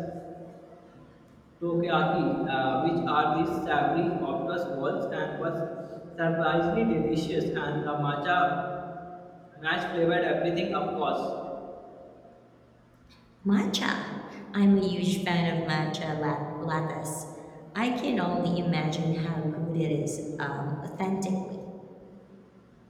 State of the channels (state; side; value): identical; both; correlation 1.00